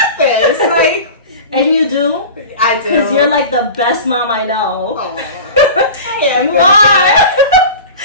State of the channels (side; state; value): both; inverted; correlation -0.34